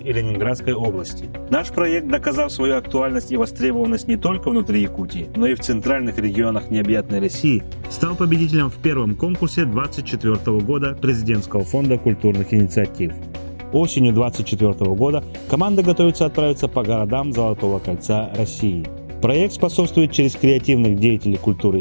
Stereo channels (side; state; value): both; inverted; correlation -1.00